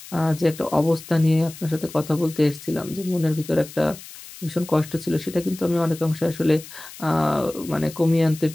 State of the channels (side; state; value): left; noise; hiss, 16 dB below the sound